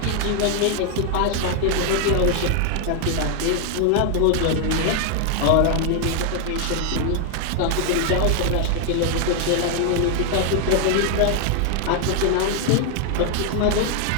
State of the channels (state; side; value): different; both; correlation 0.00